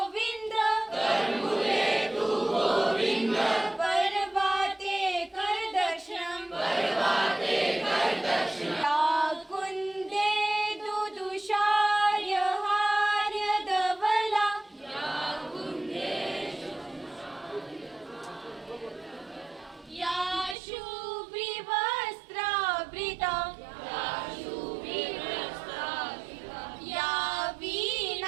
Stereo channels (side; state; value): left; drops out; at 20.6 s